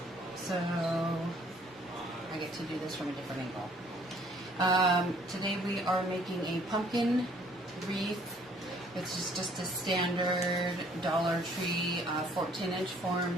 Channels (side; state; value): both; normal; correlation 0.60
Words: so I get to do this from a different angle. Today we are making a pumpkin wreath. It's just a standard Dollar Tree 14-inch form.